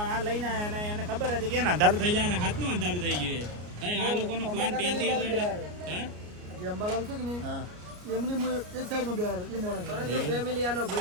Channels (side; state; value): left; late; 33 ms